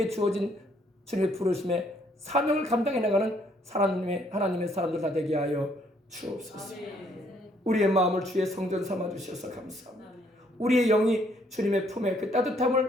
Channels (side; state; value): both; normal; correlation 0.67